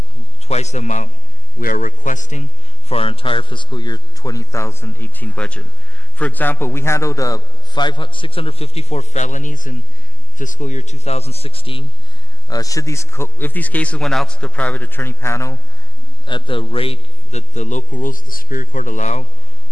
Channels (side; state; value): both; normal; correlation 0.37